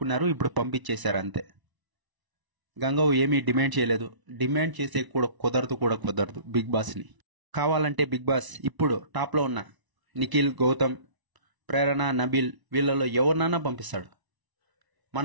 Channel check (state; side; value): late; left; 1.0 ms